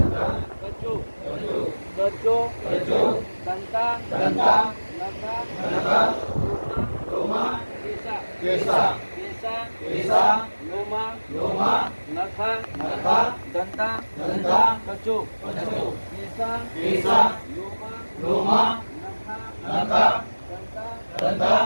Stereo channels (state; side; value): inverted; both; correlation -1.00